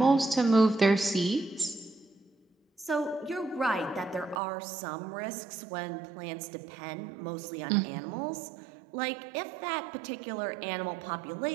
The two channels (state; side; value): drops out; left; at 4.4 s